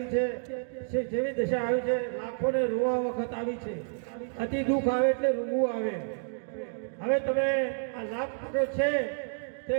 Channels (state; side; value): silent; left; digital silence